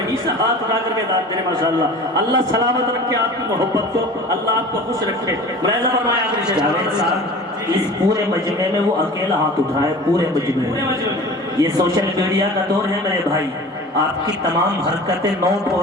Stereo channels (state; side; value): normal; both; correlation 0.39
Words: سے ہاتھ اٹھا کر کے داد دے ماشاءاللہ، اللہ سلامت رکھے آپ کی محبت کو، اللہ آپ کو خوش رکھے۔ ملاحظہ فرمائے آخری شعر، اس پورے مجمع میں وہ اکیلا ہاتھ اٹھائے، پورے مجمع میں۔ یہ سوشل میڈیا کا دور ہے میرے بھائی، آپ کی تمام حرکتیں نوٹ